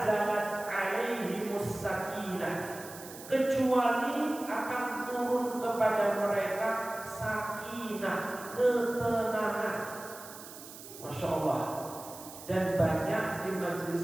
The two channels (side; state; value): right; noise; hiss, 15 dB below the sound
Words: alaihimus sakinah, kecuali akan turun kepada mereka sakinah, ketenangan. Masya Allah. Dan banyak di